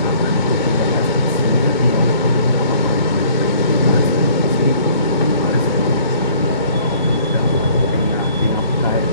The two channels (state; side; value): inverted; both; correlation -0.56